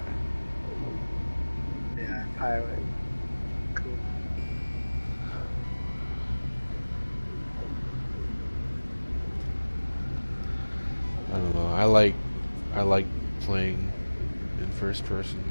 Yeah. Pilot. Cool. I don't know. I like playing in first person.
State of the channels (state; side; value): inverted; both; correlation -1.00